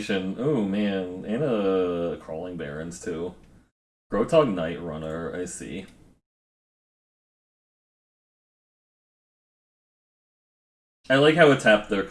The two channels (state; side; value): identical; both; correlation 1.00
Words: Oh man, and Crawling Barrens too. Grotog Night Runner, I see. I like how it tapped their